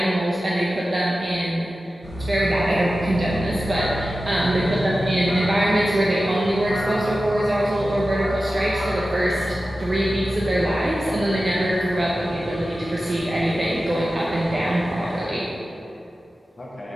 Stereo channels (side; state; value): both; normal; correlation 0.94